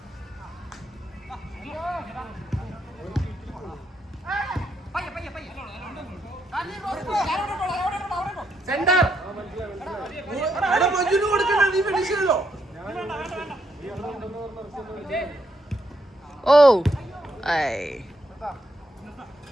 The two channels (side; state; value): both; normal; correlation 0.77